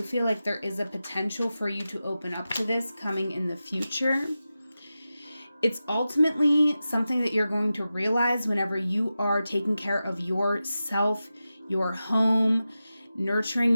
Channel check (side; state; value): both; inverted; correlation -0.93